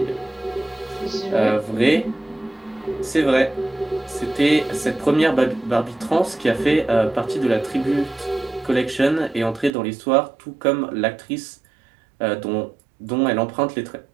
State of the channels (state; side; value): drops out; left; at 9.7 s